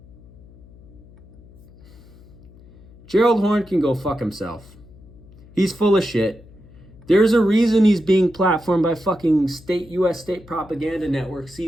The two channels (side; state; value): left; noise; hum, 23 dB below the sound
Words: Gerald Horne can go fuck himself. He's full of shit. There's a reason he's being platformed by fucking US state propaganda network